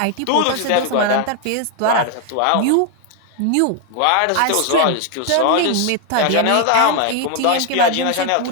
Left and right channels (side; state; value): both; different; correlation 0.00